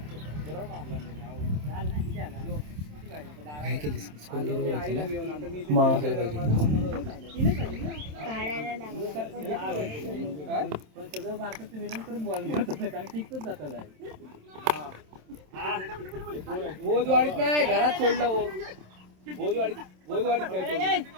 बोधवाडीत नाही घरात सोडलं हो. बोधवाडीत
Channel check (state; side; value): late; left; 27 ms